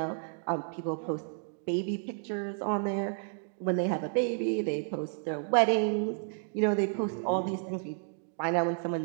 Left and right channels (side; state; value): left; silent; digital silence